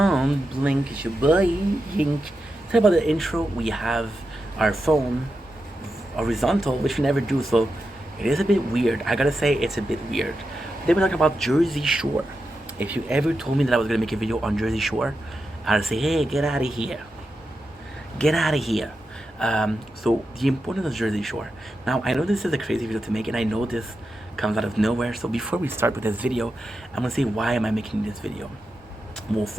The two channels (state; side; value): normal; both; correlation 0.89